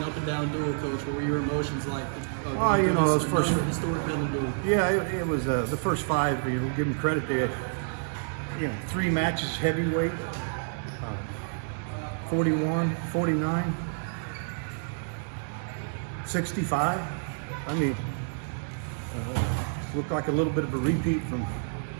up and down duel, Coach. What were your emotions like? Those first historic Bedlam duel. Yeah, it was the first five. Give them credit. They had 3 matches heavyweight, 41, 49, 65. I mean, looked like a little bit of a repeat from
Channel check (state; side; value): silent; left; digital silence